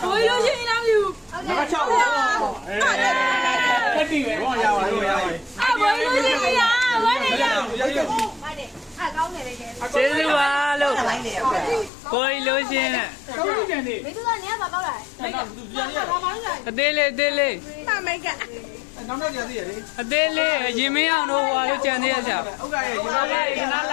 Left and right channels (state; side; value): drops out; right; at 11.9 s